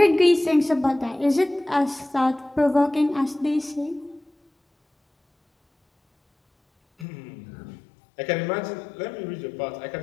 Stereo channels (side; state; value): right; drops out; at 7.1 s